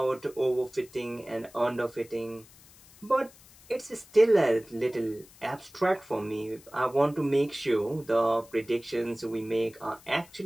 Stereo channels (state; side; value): noise; left; hiss, 24 dB below the sound